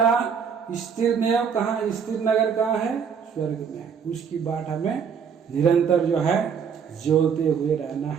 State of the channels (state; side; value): quieter; left; 6.8 dB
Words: स्थिर नेव कहाँ, स्थिर नगर कहाँ है? स्वर्ग में है। उसकी बाट हमें निरंतर जो है जोते हुए रहना